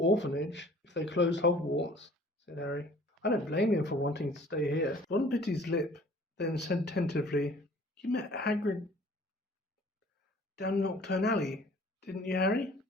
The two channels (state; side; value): normal; both; correlation 0.52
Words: if they closed Hogwarts," said Harry. "I don't blame him for wanting to stay here." Ron bit his lip, then said tentatively, "You met Hagrid down Nocturne Alley, didn't you, Harry?"